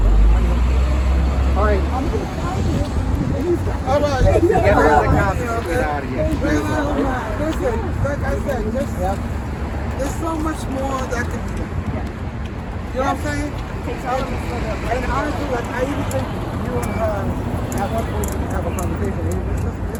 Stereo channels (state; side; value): identical; both; correlation 1.00